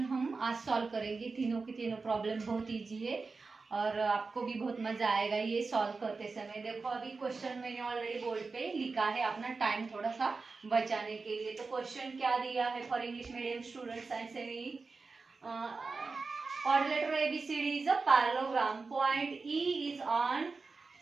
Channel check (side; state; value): left; quieter; 4.2 dB